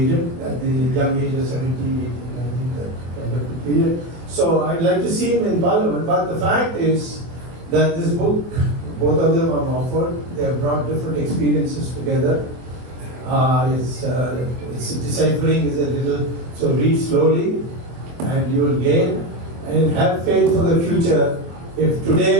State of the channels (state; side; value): late; left; 24 ms